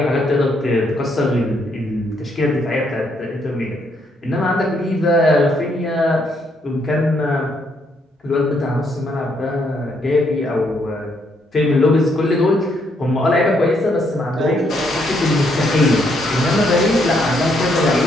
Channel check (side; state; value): both; normal; correlation 0.73